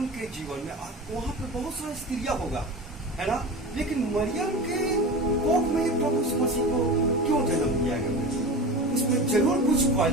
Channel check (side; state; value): both; normal; correlation 0.30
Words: के जीवन में आप वहां पर बहुत सारी स्त्रियां होगा, है ना, लेकिन मरियम के कोख में ही प्रभु यीशु मसीह को क्यों जन्म दिया गया? उसमें जरूर कुछ